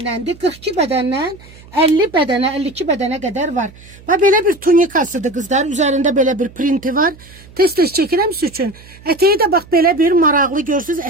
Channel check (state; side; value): noise; right; hum, 22 dB below the sound